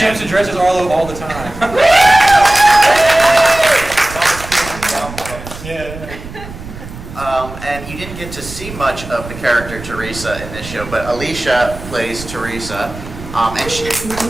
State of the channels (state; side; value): noise; right; rumble, 13 dB below the sound